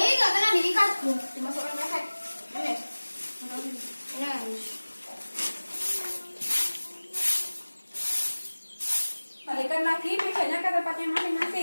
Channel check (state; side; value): inverted; both; correlation -1.00